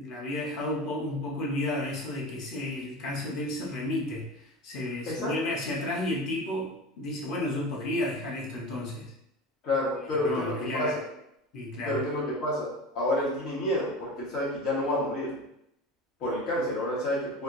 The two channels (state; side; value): normal; both; correlation 0.31